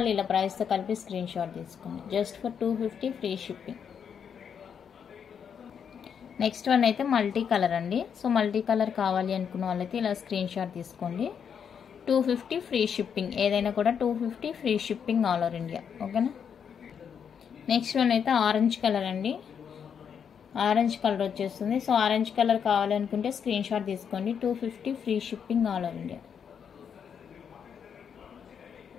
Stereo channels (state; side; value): quieter; right; 7.4 dB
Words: ఇలా ప్రైస్తో కలిపి స్క్రీన్ షాట్ తీసుకోండి. Just for 250 free shipping. Next one అయితే మల్టీ కలర్ అండి. సో మల్టీ కలర్ కావాలి అనుకున్న వాళ్ళైతే ఇలా స్క్రీన్ షాట్ తీసుకోండి. 250 ఫ్రీ షిప్పింగ్, ఏదైనా కూడా 250 free shipping all over India. ఓకేనా. నెక్స్ట్ వన్ అయితే ఆరెంజ్ కలర్ అండి. ఆరెంజ్ కలర్ వచ్చేస్తుంది. సో ఆరెంజ్ కలర్ కావాలనుకుంటే స్క్రీన్ షాట్ తీసుకోండి. 250 free shipping all over India.